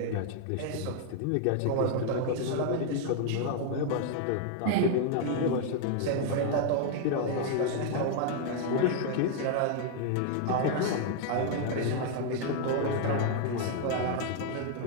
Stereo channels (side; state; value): both; different; correlation 0.00